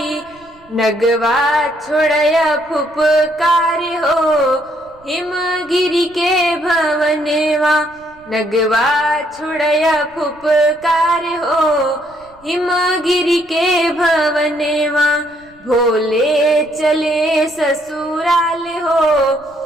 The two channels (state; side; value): noise; right; rumble, 28 dB below the sound